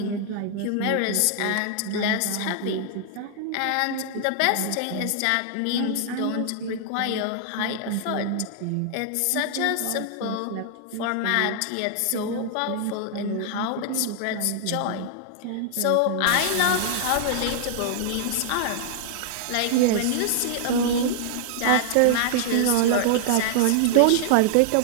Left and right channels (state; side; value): different; both; correlation -0.01